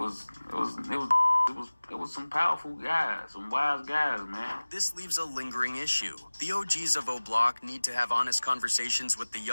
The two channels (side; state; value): both; inverted; correlation -1.00